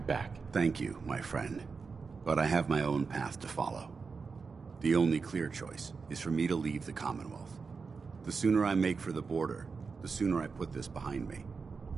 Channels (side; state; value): left; quieter; 4.9 dB